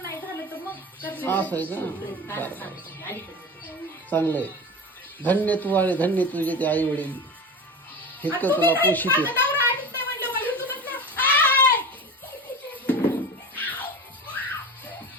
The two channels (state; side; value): normal; both; correlation 0.30